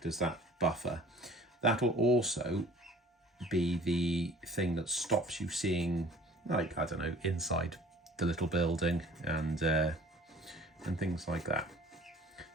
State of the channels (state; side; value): normal; both; correlation 0.49